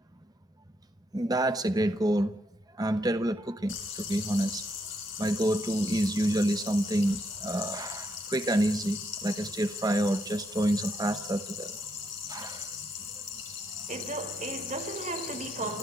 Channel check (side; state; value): both; normal; correlation 0.76